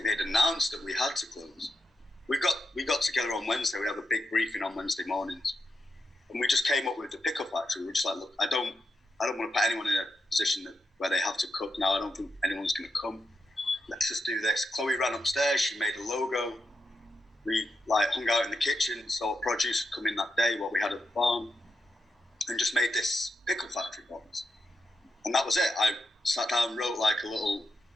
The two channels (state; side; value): normal; both; correlation 0.86